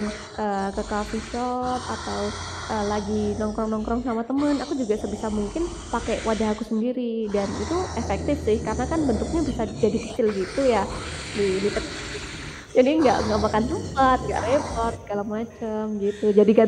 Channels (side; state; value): both; identical; correlation 1.00